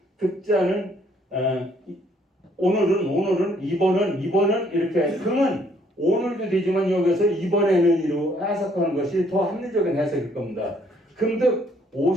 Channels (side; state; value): both; normal; correlation 0.65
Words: 오늘은 이번은 이렇게 금은 오늘도 되지만 여기서 이번에는 이로 해석하는 것이 더 합리적인 해석일 겁니다. 금득